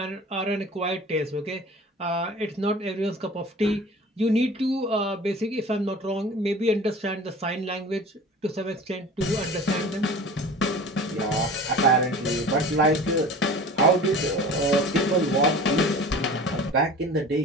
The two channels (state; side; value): normal; both; correlation 0.40